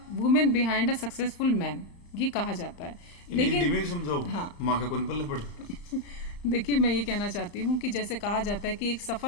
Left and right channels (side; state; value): right; late; 35 ms